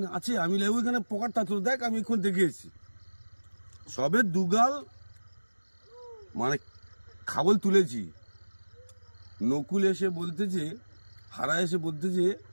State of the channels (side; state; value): both; inverted; correlation -1.00